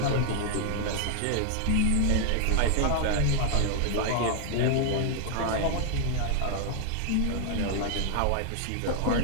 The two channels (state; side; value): different; both; correlation 0.00